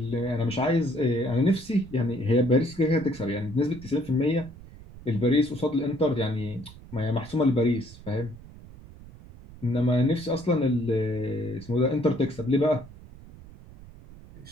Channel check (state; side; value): noise; right; rumble, 19 dB below the sound